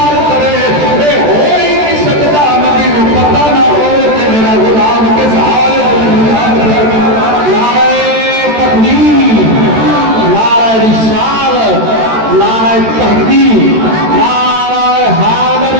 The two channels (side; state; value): left; late; 13 ms